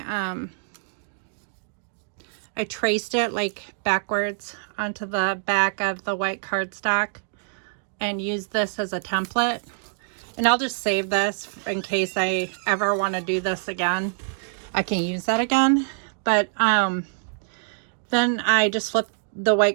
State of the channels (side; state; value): left; silent; digital silence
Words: traced it like backwards onto the back of the white cardstock and used this as a template. And I'll just save this in case I ever want to do this again. I can use that again. But then I just flipped the